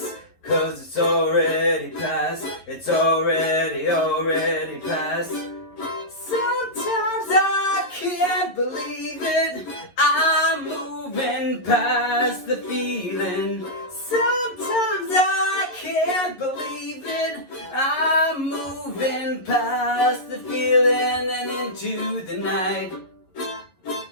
'cause it's already past. It's already past. Sometimes I can't believe it, I'm moving past the feeling. Sometimes I can't believe it, I'm moving past the feeling and into the night.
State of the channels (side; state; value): right; late; 11 ms